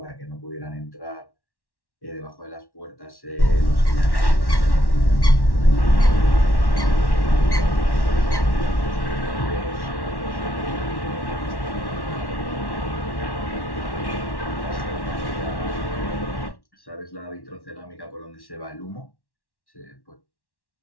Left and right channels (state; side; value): late; right; 1.1 ms